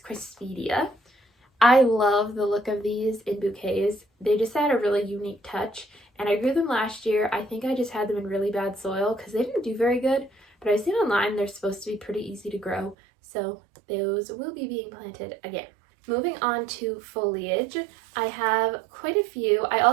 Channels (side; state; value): left; drops out; at 13.0 s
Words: Crispidia. I love the look of these in bouquets. They just add a really unique touch, and I grew them last year. I think I just had them in really bad soil because they didn't do very good, but I've seen online they're supposed to be pretty easy to grow, so those will be being planted again. Moving on to foliage, I have quite a few. I